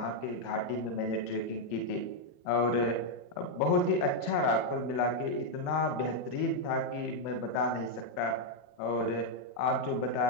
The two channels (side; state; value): right; late; 40 ms